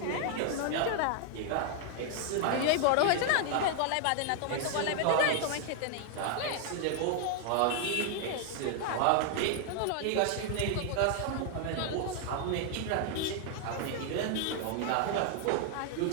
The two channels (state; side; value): different; both; correlation 0.00